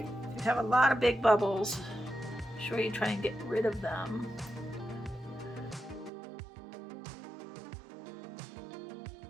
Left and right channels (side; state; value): left; drops out; at 6.1 s